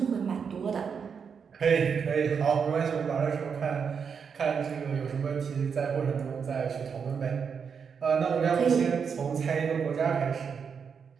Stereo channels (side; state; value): left; quieter; 6.4 dB